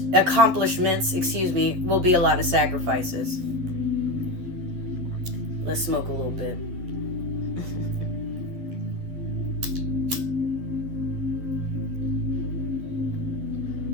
will be a lot of sacrifices. Let's smoke a little bit.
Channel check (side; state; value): left; late; 11 ms